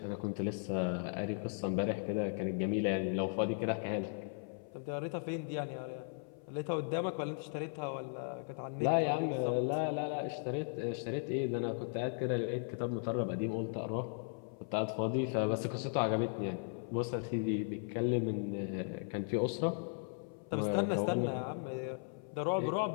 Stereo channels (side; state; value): right; silent; 53 dB below the other